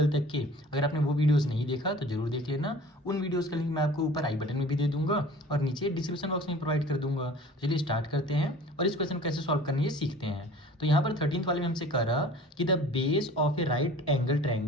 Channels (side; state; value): both; normal; correlation 0.45